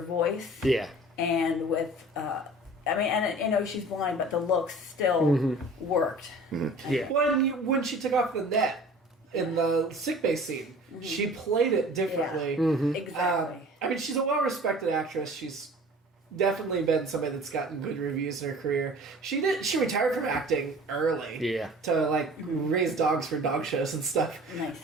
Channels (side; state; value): both; normal; correlation 0.44